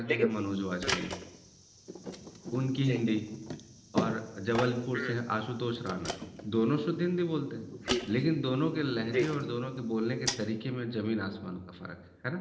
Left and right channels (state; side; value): identical; both; correlation 1.00